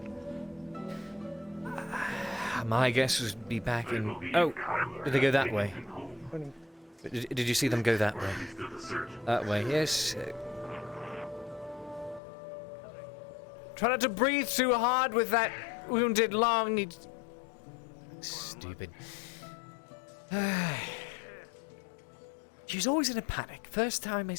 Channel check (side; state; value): right; drops out; at 12.2 s